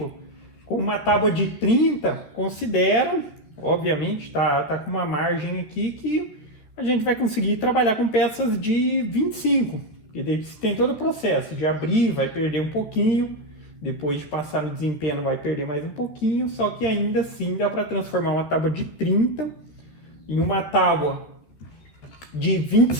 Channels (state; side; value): late; right; 13 ms